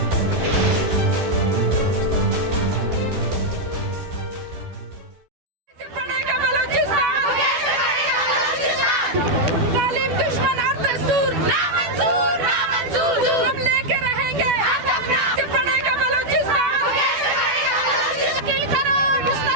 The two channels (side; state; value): left; late; 12 ms